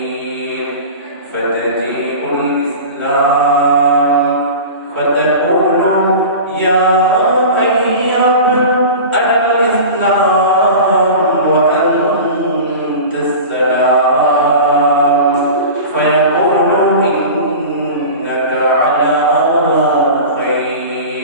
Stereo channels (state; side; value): inverted; both; correlation -0.34